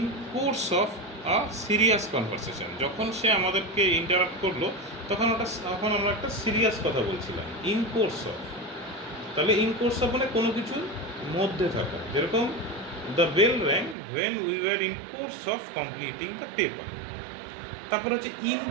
course of a serious conversation। যখন সে আমাদেরকে ইন্টারাপ্ট করলো তখন আমরা একটা সিরিয়াস কথা বলছিলাম। ইন কোর্স অফ, তাহলে ইন কোর্স অফ মানে কোনো কিছুর মধ্যে থাকা, যেরকম the bell rang when we were in course of completing the paper। তারপর হচ্ছে ইন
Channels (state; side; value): drops out; left; at 14.0 s